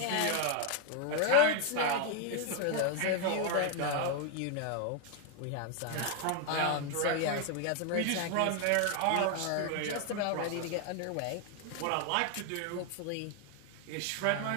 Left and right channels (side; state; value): both; different; correlation 0.01